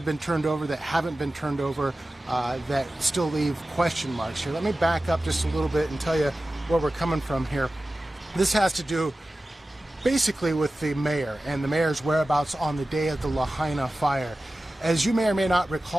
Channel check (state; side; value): normal; both; correlation 0.95